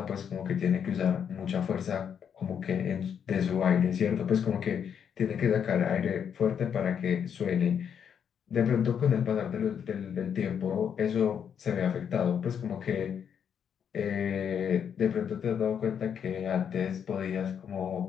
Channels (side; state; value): right; quieter; 7.9 dB